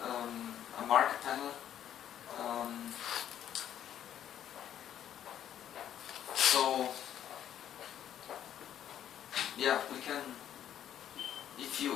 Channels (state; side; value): quieter; right; 10.4 dB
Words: a marker panel. So yeah, we can. If you